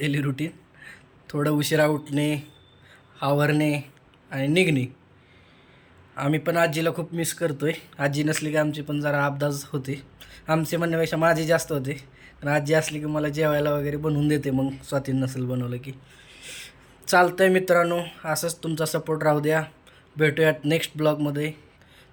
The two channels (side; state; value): both; identical; correlation 1.00